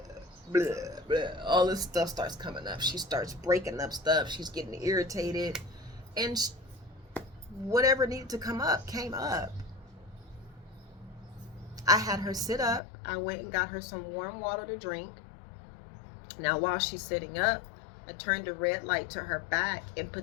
blah, all this stuff starts coming up. She starts breaking up stuff. She's getting irritated, and whatever needed to come up came up. I had her sit up. I went and got her some warm water to drink. Now while she's sitting up, I turned the red light to her back and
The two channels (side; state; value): right; drops out; at 12.8 s